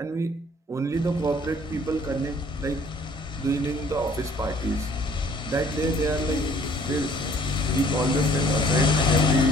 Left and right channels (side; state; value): both; normal; correlation 0.56